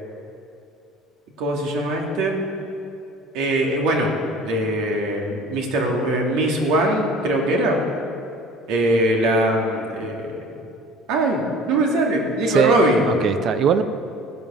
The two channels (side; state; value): both; normal; correlation 0.45